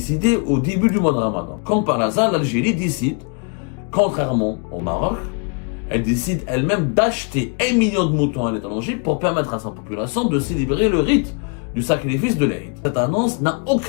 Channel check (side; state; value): right; quieter; 35.9 dB